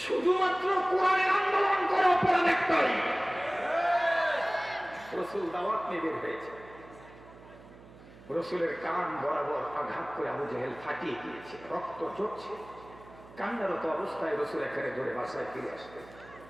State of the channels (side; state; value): right; noise; hum, 21 dB below the sound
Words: শুধুমাত্র কোরআনের আন্দোলন করে অপরাধ একটাই। রসুল দাওয়াত নিয়ে বের হয়েছে, রসুলের কান বরাবর আঘাত করে আবু জেহেল ফাটিয়ে দিয়েছে, রক্ত ঝরছে। কান্নারত অবস্থায় রসুল এখানে ধরে বাসায় ফিরে আসবে।